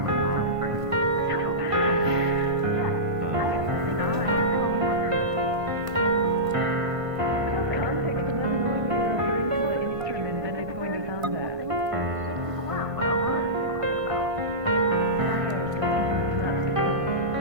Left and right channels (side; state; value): left; late; 1.5 ms